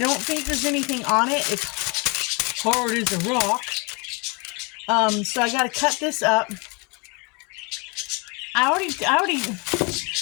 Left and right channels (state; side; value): quieter; right; 30.8 dB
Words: think there's anything on it. It's hard as a rock. So I got to cut this up. I